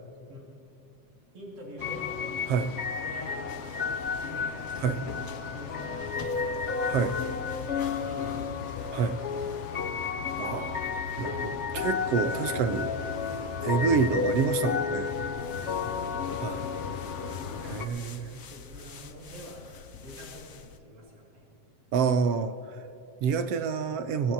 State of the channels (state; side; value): late; left; 7.6 ms